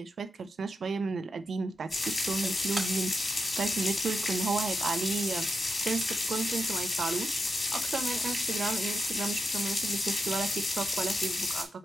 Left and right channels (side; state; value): both; normal; correlation 0.87